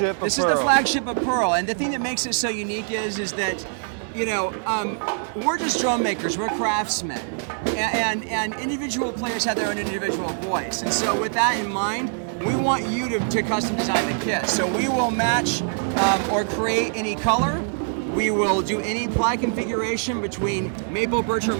of This is Pearl. the flagship of Pearl, and the thing that makes it so unique is that, we're just drum makers, we're craftsmen, and individual players have their own individual voice. And so with that in mind, we want you to custom design the kit. So we will match or create any color. We will do any ply configuration between maple, birch, or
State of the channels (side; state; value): left; silent; 59 dB below the other